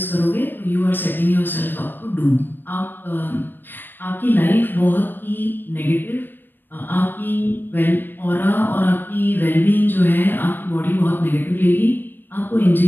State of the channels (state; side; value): late; right; 0.094 ms